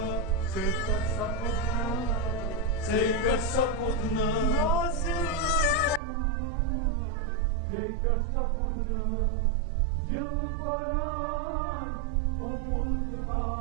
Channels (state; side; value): drops out; left; at 6.0 s